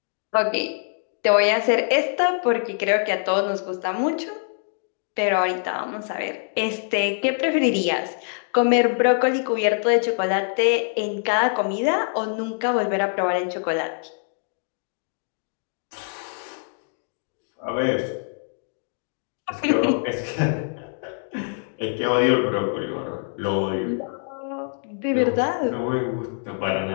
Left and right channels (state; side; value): silent; right; 62 dB below the other